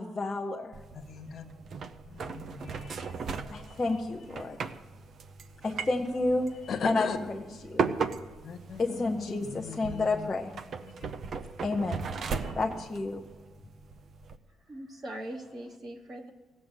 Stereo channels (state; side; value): normal; both; correlation 0.83